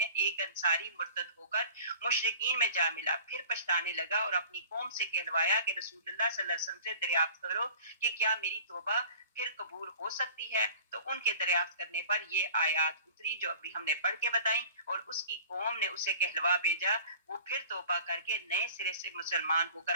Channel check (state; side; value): inverted; both; correlation -0.45